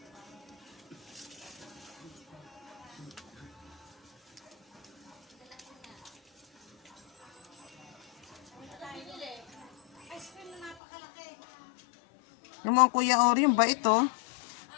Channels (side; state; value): right; drops out; at 10.8 s